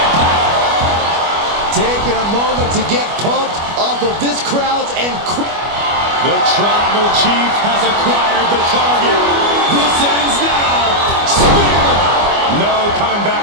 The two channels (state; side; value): late; left; 25 ms